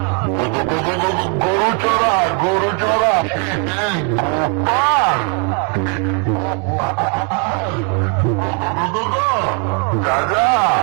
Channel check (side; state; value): left; quieter; 40.0 dB